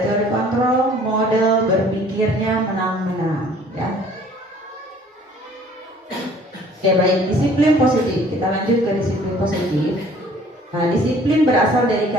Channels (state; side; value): normal; both; correlation 0.54